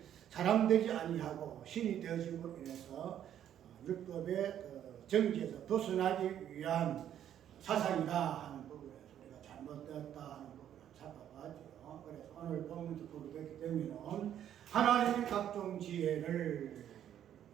사람 되지 아니하고 신이 되어짐으로 인해서 율법의 정지에서 벗어나기 위한 사상이다 하는 부분에서 우리가 잘못되었다 하는 부분을 살펴봤죠. 그래서 오늘 본문도 보게 됐기 때문에 하나님의 각종 지혜를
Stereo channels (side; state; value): left; quieter; 10.4 dB